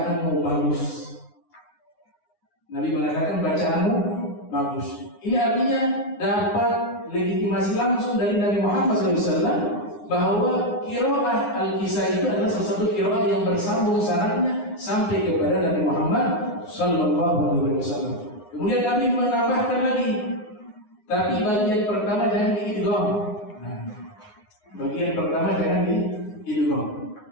bagus. Nabi mengatakan bacaanmu bagus. Ini artinya dapat legitimasi langsung dari Nabi Muhammad SAW bahwa qiraah Al-Kisai itu adalah salah satu qiraah yang bersambung sanadnya sampai kepada Nabi Muhammad sallallahu alaihi wasallam. Kemudian Nabi menambahkan lagi, tapi bagian pertama jangan diidgham. Bagian pertama jangan diidgham.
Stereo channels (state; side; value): late; right; 9.4 ms